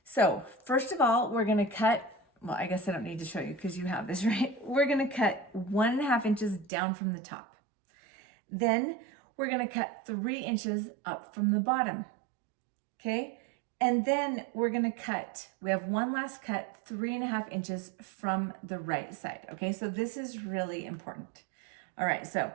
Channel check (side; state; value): left; drops out; at 6.7 s